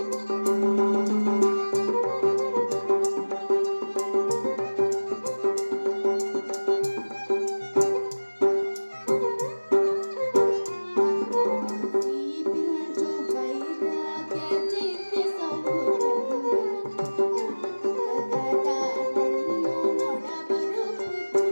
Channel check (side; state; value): both; inverted; correlation -1.00